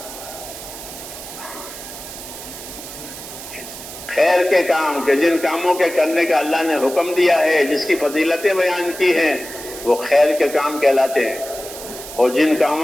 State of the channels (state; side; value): noise; right; hiss, 12 dB below the sound